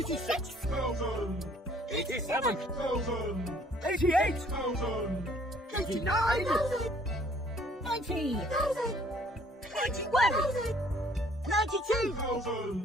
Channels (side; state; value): both; normal; correlation 0.59